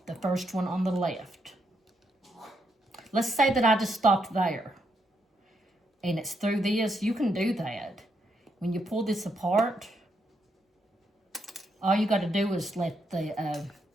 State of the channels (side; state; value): both; normal; correlation 0.78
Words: the first one on the left. Let's say that I just stopped there, and it's through this. You can do that. When you pull this apart, all you got to do is let the